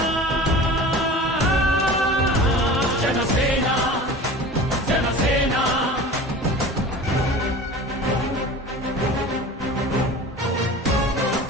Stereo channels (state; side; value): normal; both; correlation 0.37